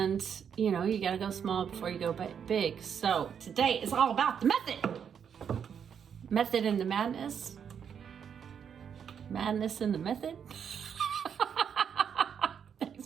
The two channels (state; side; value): quieter; left; 7.7 dB